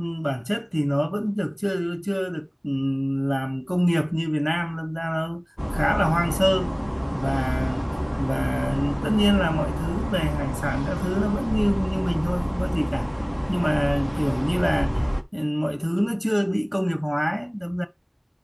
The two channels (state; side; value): identical; both; correlation 1.00